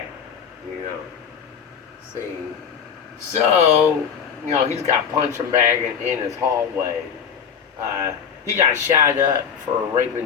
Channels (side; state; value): right; quieter; 7.3 dB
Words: See, so he's got punching bag in his hallway. He got shot up for